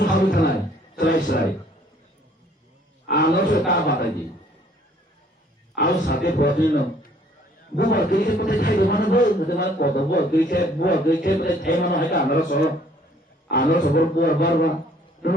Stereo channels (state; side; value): normal; both; correlation 0.60